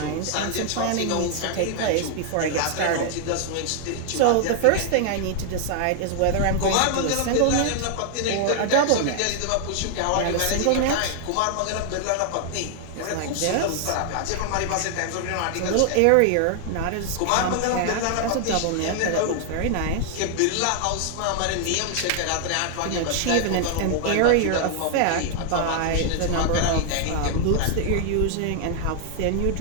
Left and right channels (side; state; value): both; different; correlation 0.00